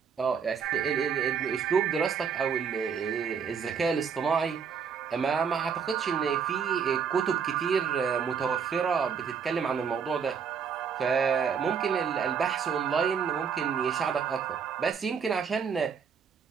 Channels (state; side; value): quieter; left; 6.7 dB